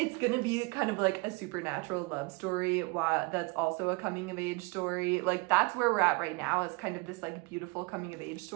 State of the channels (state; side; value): quieter; left; 27.2 dB